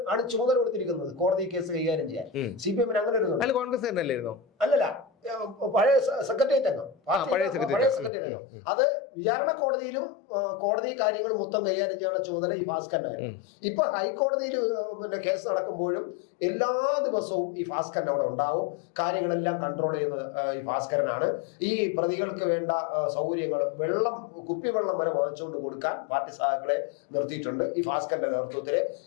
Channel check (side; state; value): right; drops out; at 8.1 s